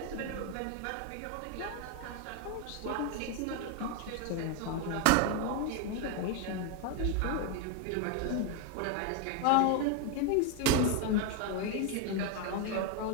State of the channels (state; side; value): different; both; correlation 0.01